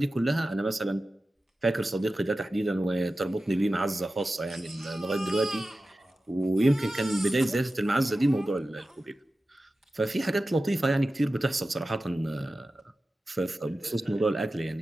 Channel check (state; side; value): normal; both; correlation 0.94